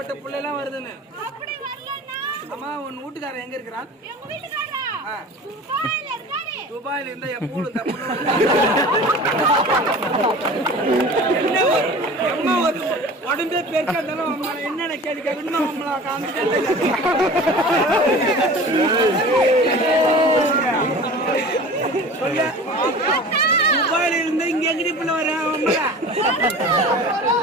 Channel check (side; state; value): both; normal; correlation 0.39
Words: புள்ள எல்லாம் வருதுன்னு. அம்மா உன் வீட்டுக்காரன் எங்க இருக்கிறான்? துபாயில இருந்தா எப்போ என்ன உடம்பே பெருக்கா இருந்தாலும் என்னென்ன கேள்வி கேட்கணும் நம்மள சொல்ல. துபாயில இருந்து இங்க எங்கடி புள்ள வர